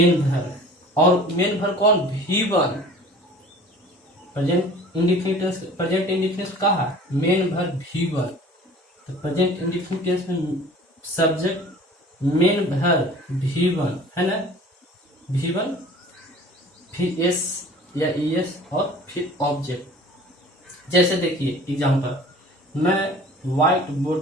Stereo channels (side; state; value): both; normal; correlation 0.45